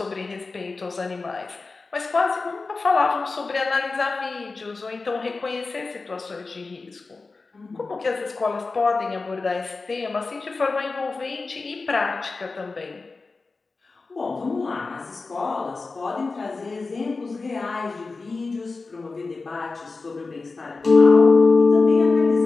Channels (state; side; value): quieter; right; 3.9 dB